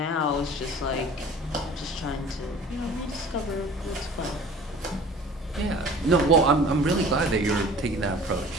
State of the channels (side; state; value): both; normal; correlation 0.45